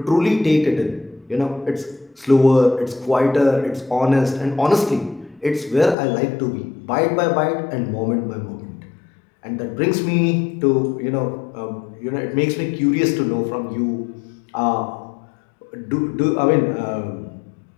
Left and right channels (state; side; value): drops out; right; at 6.0 s